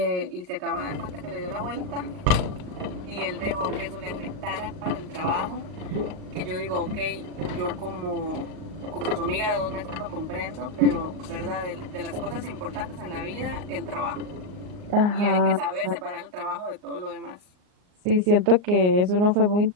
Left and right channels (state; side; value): late; left; 38 ms